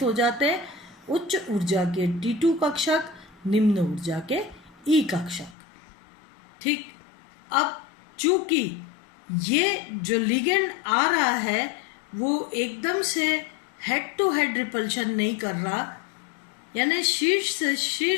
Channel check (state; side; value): drops out; right; at 5.6 s